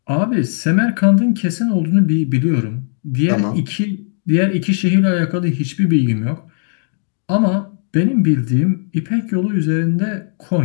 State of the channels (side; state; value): right; silent; 63 dB below the other